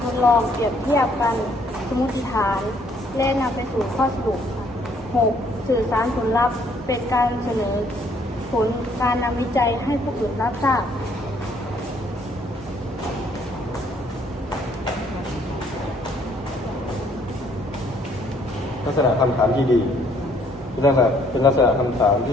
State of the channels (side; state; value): both; normal; correlation 0.65